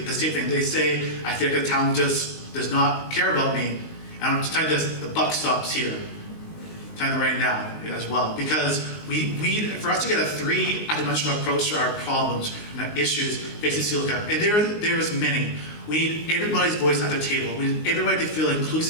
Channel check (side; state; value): right; late; 19 ms